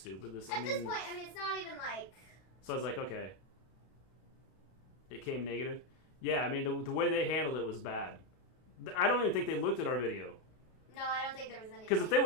This point, it's not even like... So I was like, okay. It came negative. Yeah, I mean, the way they handled it was bad. I don't even think they looked at our video. No, I don't think there was anything. Because if they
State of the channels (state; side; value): late; right; 32 ms